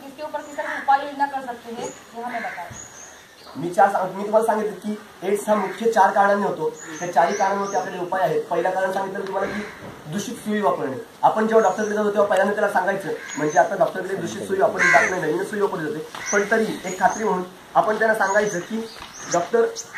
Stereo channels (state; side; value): identical; both; correlation 1.00